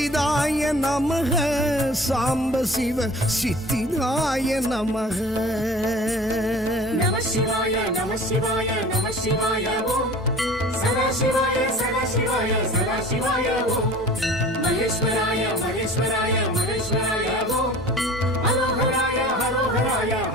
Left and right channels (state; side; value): normal; both; correlation 0.43